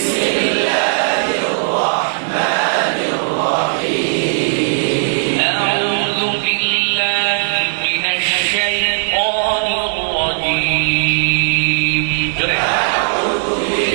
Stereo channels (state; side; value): silent; left; 69 dB below the other